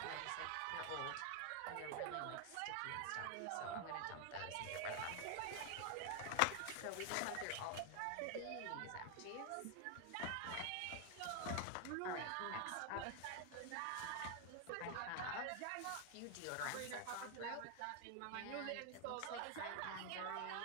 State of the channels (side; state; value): both; different; correlation 0.01